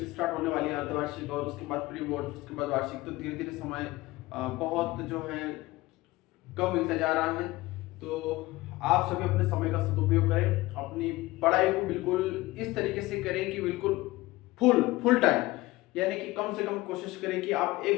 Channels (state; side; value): quieter; right; 19.4 dB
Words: स्टार्ट होने वाली है, अर्धवार्षिक, और उसके बाद प्री बोर्ड, उसके बाद वार्षिक। तो धीरे धीरे समय बहुत जो है कम मिलता जा रहा है। तो आप सभी अपने समय का सदुपयोग करें, अपनी पढ़ाई को बिल्कुल इस तरीके से करें कि बिल्कुल फुल टाइम, यानी कि कम से कम कोशिश करें कि आप